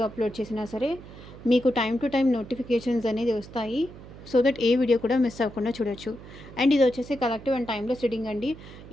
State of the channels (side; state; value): right; noise; hum, 17 dB below the sound